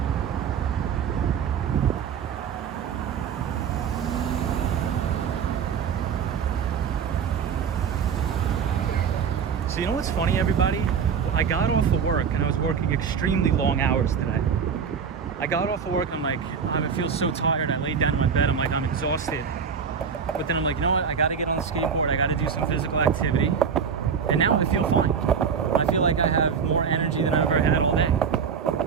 So you know what's funny, everybody? I got off of work and I was working extremely long hours today. I got off of work, I'm like, I feel so tired. I laid down in my bed, I'm like, I'm exhausted. But then I'm like, you know what? I gotta get on the skateboard. I gotta do some physical activity. And now I feel fine. I feel like I have more energy than I've ever had all day.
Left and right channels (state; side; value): quieter; left; 6.7 dB